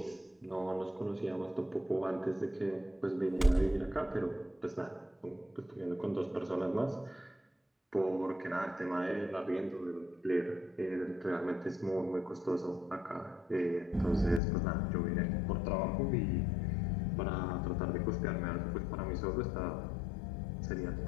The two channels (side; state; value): right; drops out; at 14.4 s